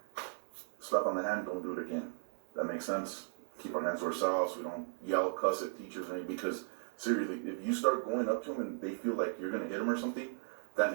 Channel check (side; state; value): left; silent; 53 dB below the other